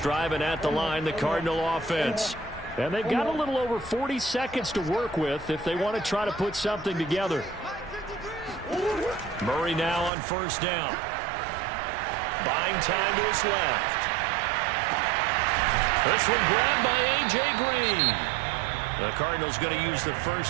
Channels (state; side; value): drops out; left; at 10.1 s